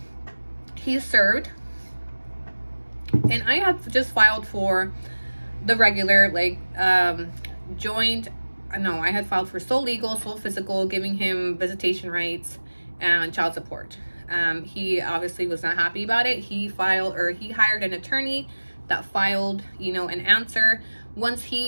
He's served, and I had just filed for the regular, like, joint. No, I had filed for sole legal, sole physical, giving him visitation rights and child support. He obviously was not happy about it. He hired an attorney that filed, you know, an answer. Once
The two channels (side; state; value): both; inverted; correlation -1.00